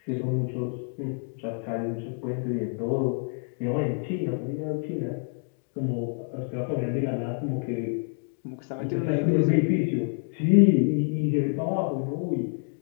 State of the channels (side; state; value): right; silent; 60 dB below the other